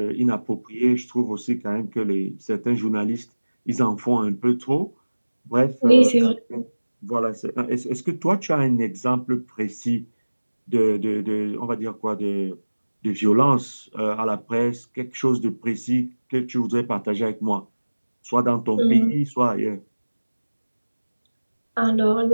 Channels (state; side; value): inverted; both; correlation -1.00